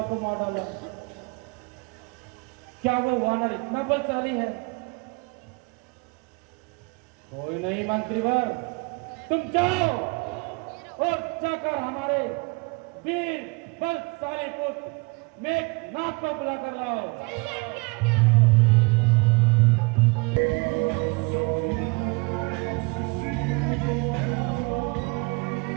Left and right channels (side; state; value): left; quieter; 29.4 dB